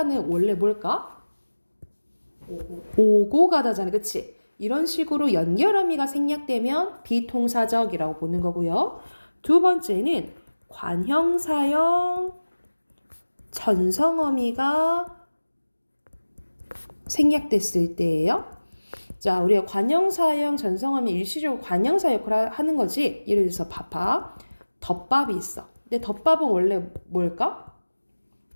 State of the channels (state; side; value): inverted; both; correlation -1.00